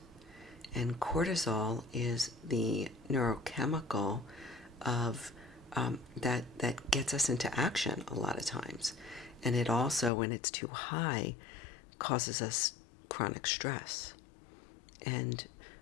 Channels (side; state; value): right; drops out; at 10.1 s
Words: And cortisol is the neurochemical of that gets us into action a lot of times. And it also, when it's too high, causes us chronic stress. And